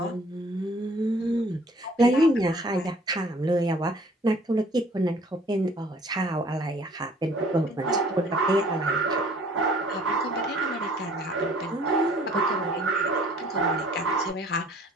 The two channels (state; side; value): normal; both; correlation 0.55